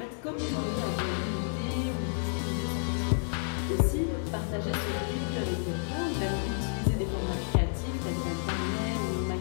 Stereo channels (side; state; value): right; silent; digital silence